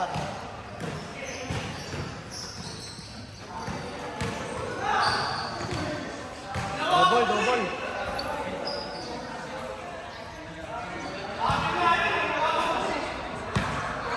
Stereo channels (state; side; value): identical; both; correlation 1.00